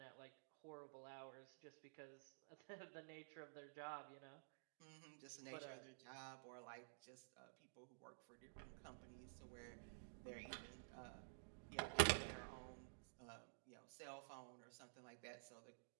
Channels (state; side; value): silent; left; digital silence